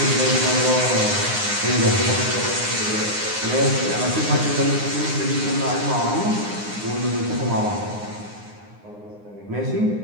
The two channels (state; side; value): late; left; 9.7 ms